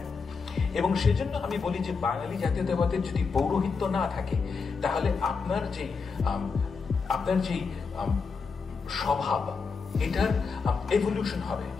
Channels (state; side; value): quieter; right; 5.0 dB